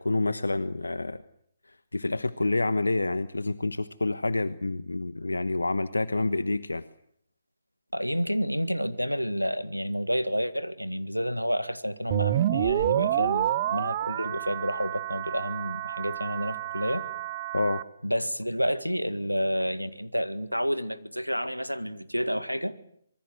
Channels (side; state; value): both; inverted; correlation -0.84